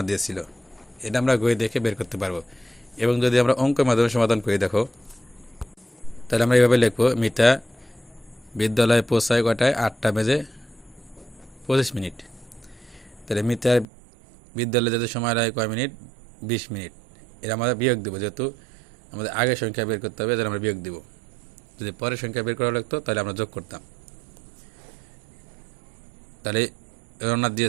দিয়েছিল। এটা আমরা গই দেখে বের করতে পারবো। এবং যদি আমরা অঙ্কের মাধ্যমে সমাধান করি, দেখো তাহলে আমরা এইভাবে লিখবো, মিতা বিদ্যালয়ে পৌঁছায় কটায়? 8:25। তাহলে মিতার বিদ্যালয়ে যেতে সময় লাগে কয় মিনিট? 20 মিনিট। এটা আমরা বিয়োগ দেবো, যেহেতু আমাদের আগের সংখ্যা বের করতে হবে, তাহলে আমরা বিয়োগ দেবো। যদি পরের সংখ্যা বের করা লাগতো তাহলে আমরা যোগ করতাম। তাহলে রওনা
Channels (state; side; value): drops out; left; at 13.9 s